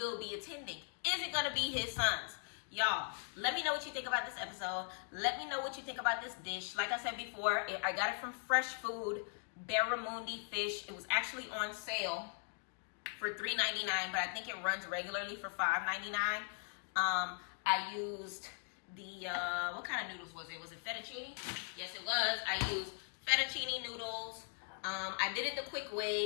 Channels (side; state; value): right; silent; 51 dB below the other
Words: be attending? Is it going to be his son's? Y'all, let me know what you think about this episode. Let me know what you think about this dish. Like I said before, I got it from Fresh Food, Barramundi fish. It was actually on sale for $3.99, but I think it runs regularly for $5.99. I used the, what kind of noodles was it? Was it fettuccine? Yes, it was. I used fettuccine noodles. I did it the quick